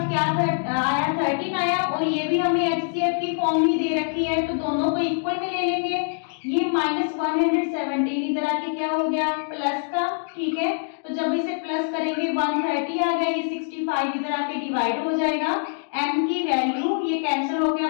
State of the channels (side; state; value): right; silent; digital silence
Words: क्या आया? 13 आया और ये भी हमें HCF की फॉर्म ही दे रखी है, तो दोनों को इक्वल में ले लेंगे. ये माइनस 117 इधर आके क्या हो गया? प्लस का. ठीक है, तो जब इसे प्लस करेंगे 130 आ गया. ये 65 इधर आके डिवाइड हो जाएगा. m की वैल्यू ये कैंसिल हो गया,